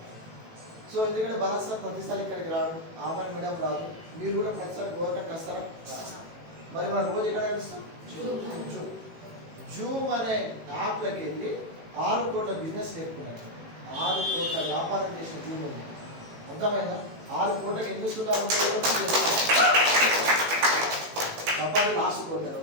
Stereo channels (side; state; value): left; late; 18 ms